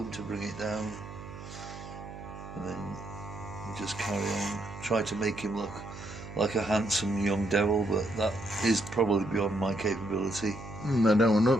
to bring it down. And then you just carry on. Try to make him look like a handsome young devil, but that is probably beyond my capability. I don't want to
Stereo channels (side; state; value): right; noise; hum, 13 dB below the sound